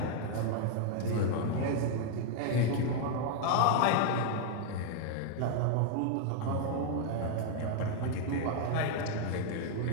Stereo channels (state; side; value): different; both; correlation 0.00